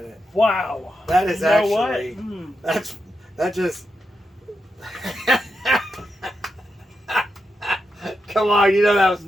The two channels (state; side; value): normal; both; correlation 0.86